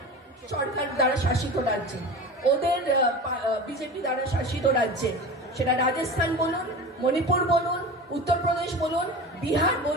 সরকার দ্বারা শাসিত রাজ্যে, ওদের বিজেপি দ্বারা শাসিত রাজ্যে। সেটা রাজস্থান বলুন, মণিপুর বলুন, উত্তরপ্রদেশ বলুন, বিহার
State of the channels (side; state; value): both; normal; correlation 0.32